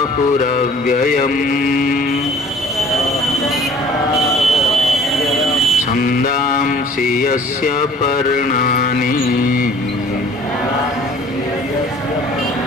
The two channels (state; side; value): normal; both; correlation 0.51